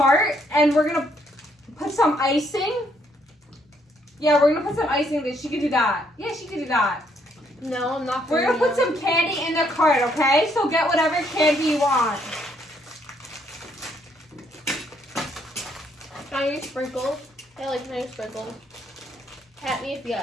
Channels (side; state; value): both; normal; correlation 0.71